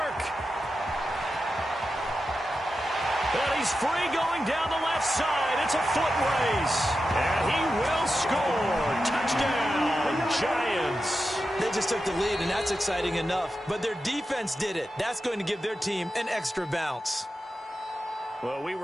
And he's free going down the left side. It's a foot race. And he will score. Touchdown, Giants. They just took the lead, and that's exciting enough. But their defense did it. That's going to give their team an extra bounce. Well, we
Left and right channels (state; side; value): normal; both; correlation 0.90